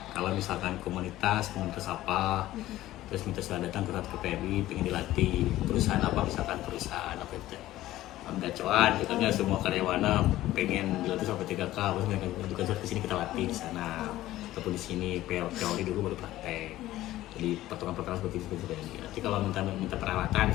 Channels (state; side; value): quieter; right; 15.3 dB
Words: Kalau misalkan komunitas apa, terus minta sudah datang ke PMI, pengen dilatih. Perusahaan apa, misalkan perusahaan apa itu, gacoan, katanya semua karyawannya pengen dilatih sampai 3K, terus mereka juga ke sini kita latih di sana, ataupun di sini teori dulu baru praktek. Jadi pertolongan seperti itu. Nanti kalau minta perawatan,